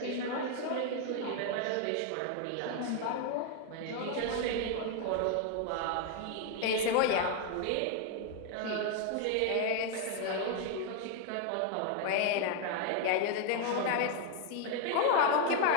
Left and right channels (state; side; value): different; both; correlation 0.01